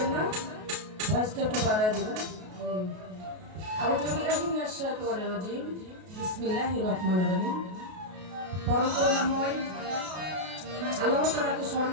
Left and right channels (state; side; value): late; left; 33 ms